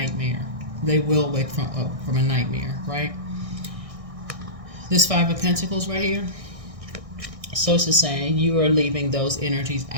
They will wake from a nightmare, right? This 5 of Pentacles right here. So it's just saying you are leaving those energies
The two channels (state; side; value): late; left; 1.6 ms